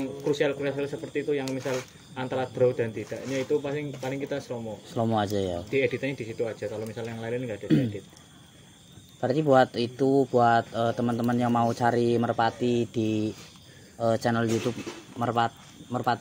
krusial seperti itu yang misal antara draw dan tidaknya itu paling kita slow mo aja ya. di editannya di situ aja. Kalau misalnya yang lain nggak ada diedit. Berarti buat teman-teman yang mau cari merpati di channel YouTube Merpati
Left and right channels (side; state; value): both; identical; correlation 1.00